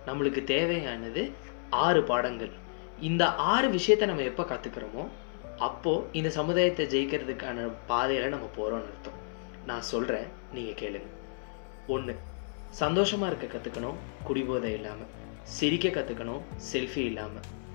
நம்மளுக்கு தேவையானது 6 பாடங்கள். இந்த 6 விஷயத்தை நம்ம எப்போ கற்றுக்கிறோமோ அப்போது இந்த சமுதாயத்தை ஜெயிக்கிறதுக்கான பாதையில் நம்ம போகிறோம்னு அர்த்தம். நான் சொல்கிறேன், நீங்கள் கேளுங்க. 1, சந்தோஷமாக இருக்க கற்றுக்கணும், குடிபோதை இல்லாமல். சிரிக்க கற்றுக்கணும், செல்ஃபி இல்லாமல்.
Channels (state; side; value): silent; right; 57 dB below the other